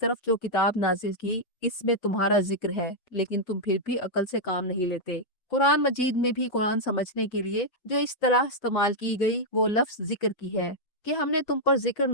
جو کتاب نازل کی اس میں تمہارا ذکر ہے، لیکن تم پھر بھی عقل سے کام نہیں لیتے۔ قرآن مجید میں بھی قرآن سمجھنے کے لیے جو اصطلاح استعمال کی گئی وہ لفظ ذکر کی ہے کہ ہم نے تم پر ذکر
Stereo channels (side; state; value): right; late; 5.9 ms